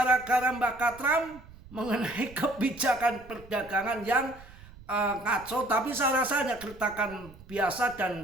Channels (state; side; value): noise; right; rumble, 20 dB below the sound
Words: Mbak Katram mengenai kebijakan perdagangan yang ngaco, tapi saya rasa hanya gertakan biasa